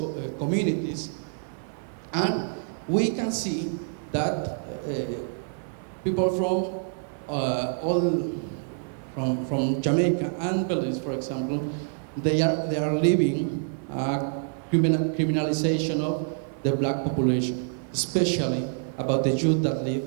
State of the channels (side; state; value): left; silent; 57 dB below the other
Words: communities. And we can see that people from Jamaica and Belize, for example, they are living criminalization of the black population, especially about the youth that